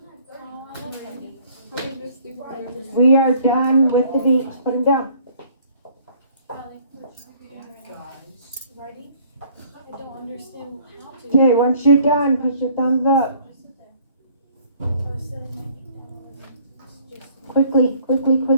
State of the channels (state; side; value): inverted; both; correlation -0.58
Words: We are done with the beaks. Put them down. Okay, once you're done, put your thumbs up. Quickly, quickly,